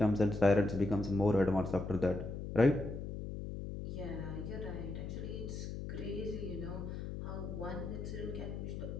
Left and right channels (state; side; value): noise; left; hum, 6 dB below the sound